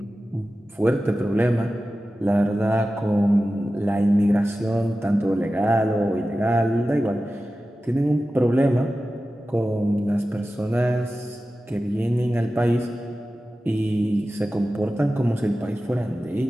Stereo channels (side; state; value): both; normal; correlation 0.94